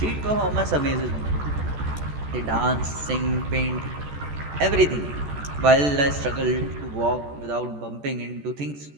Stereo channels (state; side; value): late; left; 14 ms